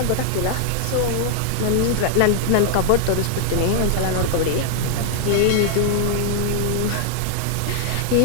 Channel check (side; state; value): both; different; correlation -0.01